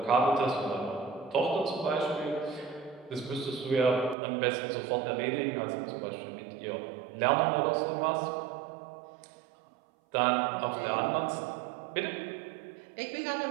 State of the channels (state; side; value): drops out; left; at 4.2 s